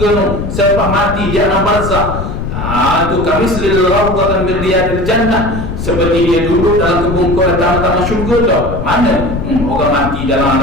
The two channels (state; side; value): noise; left; rumble, 5 dB below the sound